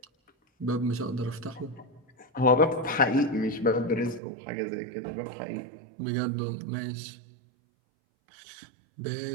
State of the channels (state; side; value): drops out; left; at 4.2 s